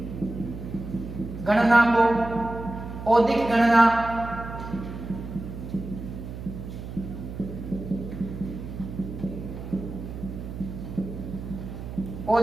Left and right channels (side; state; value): right; noise; hum, 9 dB below the sound